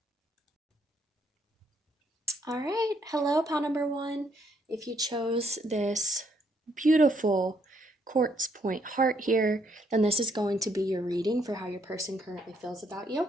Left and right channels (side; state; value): both; normal; correlation 0.71